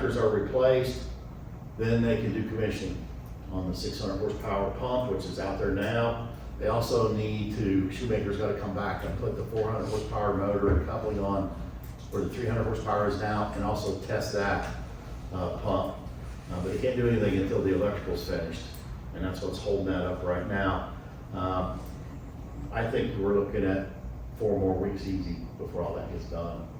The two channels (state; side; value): identical; both; correlation 1.00